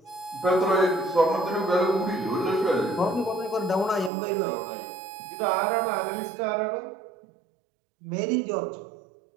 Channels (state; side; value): drops out; left; at 4.1 s